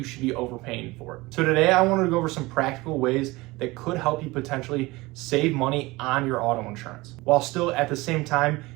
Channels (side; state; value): left; quieter; 21.5 dB